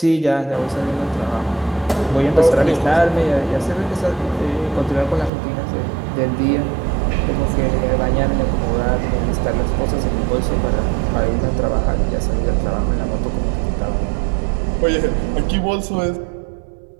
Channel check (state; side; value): drops out; left; at 5.3 s